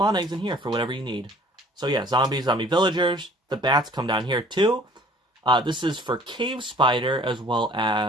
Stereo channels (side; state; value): both; normal; correlation 0.53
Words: eggs in here for whatever you need. So yeah, zombies, zombie villagers. The bats come down here too. This is for cave spider, as well